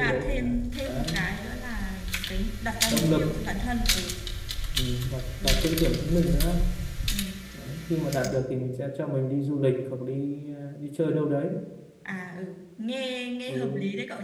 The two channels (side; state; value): both; identical; correlation 1.00